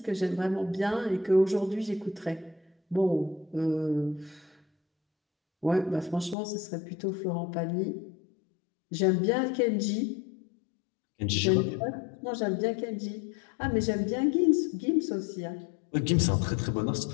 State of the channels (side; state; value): right; drops out; at 6.4 s